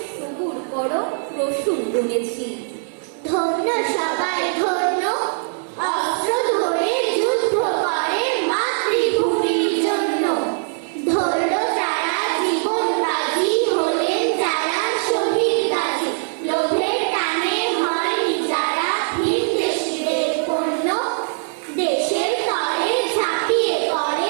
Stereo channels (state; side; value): silent; left; digital silence